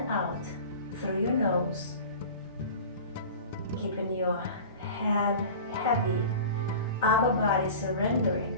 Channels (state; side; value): inverted; both; correlation -0.37